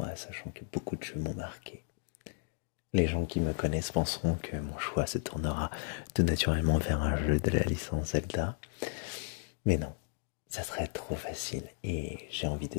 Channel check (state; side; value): silent; right; 55 dB below the other